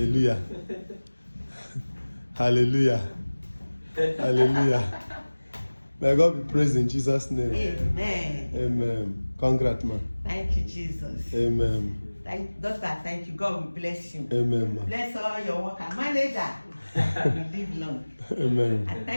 Hallelujah. Hallelujah. May God be praised in Jesus' name. Amen. Amen. Congrats, man. Thank you, Jesus. Amen. Doctor, thank you. God will bless you. Amen, man. Bless all your workers. Manager, you live long. Amen. I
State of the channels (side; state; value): both; inverted; correlation -1.00